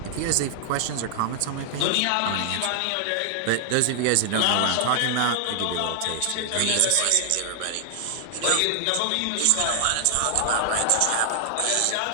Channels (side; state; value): both; different; correlation 0.00